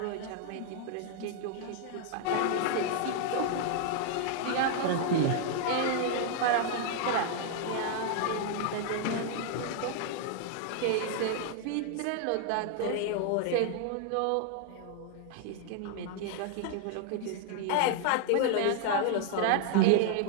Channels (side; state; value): both; different; correlation 0.00